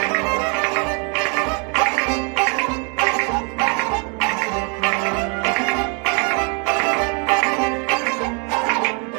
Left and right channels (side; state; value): left; quieter; 34.3 dB